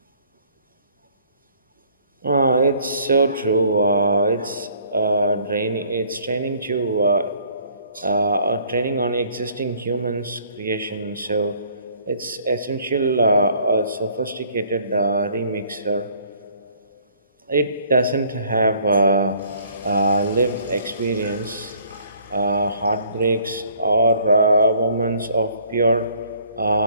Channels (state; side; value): inverted; both; correlation -0.60